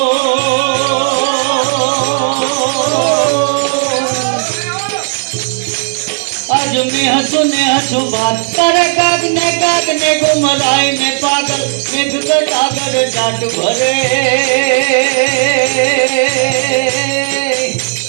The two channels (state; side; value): silent; left; digital silence